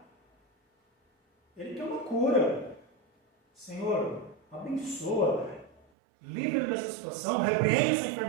Ele quer uma cura. Senhor, abençoa. Livra-me dessa situação, repreende essa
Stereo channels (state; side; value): drops out; left; at 5.9 s